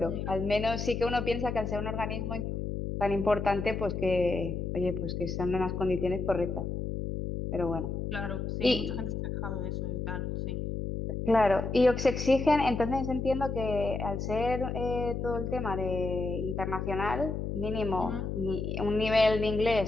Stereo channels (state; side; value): noise; left; hum, 3 dB below the sound